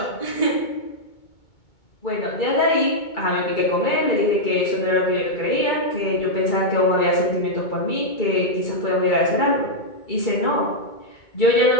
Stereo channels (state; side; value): late; right; 2.2 ms